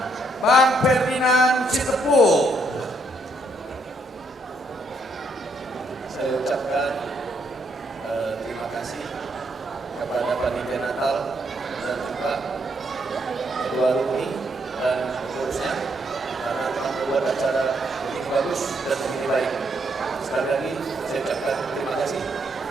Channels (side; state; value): both; normal; correlation 0.73